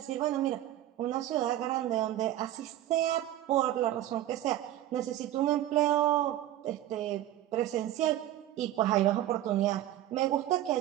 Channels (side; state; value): left; quieter; 13.4 dB